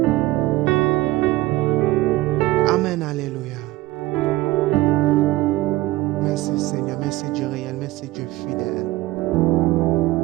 Amen, alléluia. Merci Seigneur, merci Dieu réel, merci Dieu fidèle.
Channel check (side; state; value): left; quieter; 18.3 dB